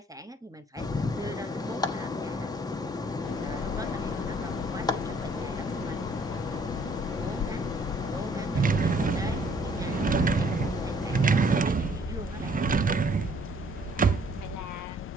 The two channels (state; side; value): normal; both; correlation 0.61